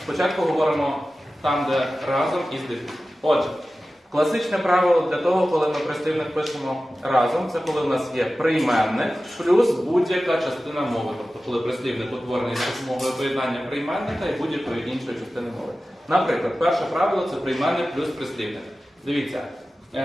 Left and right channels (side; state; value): both; normal; correlation 0.95